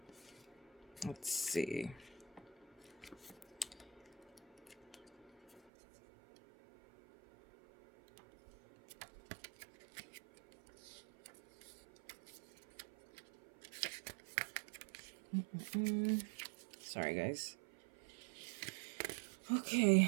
Let's see. Sorry, guys.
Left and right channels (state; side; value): drops out; left; at 5.6 s